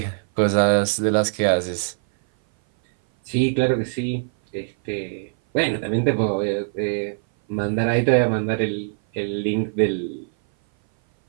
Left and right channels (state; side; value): silent; left; 58 dB below the other